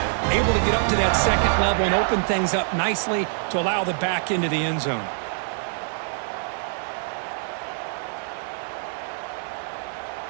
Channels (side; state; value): left; silent; digital silence